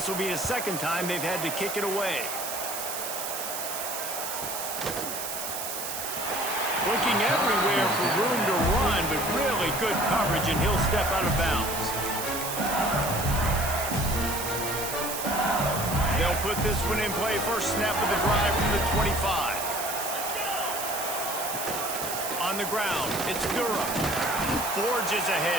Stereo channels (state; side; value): noise; right; hiss, 5 dB below the sound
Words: will be the second time they've had to kick it away. Looking everywhere for room to run, but really good coverage, and he'll step out of bounds. They'll put this one in play. First snap of the drive from the 25. On the ground, it's Durham. Forges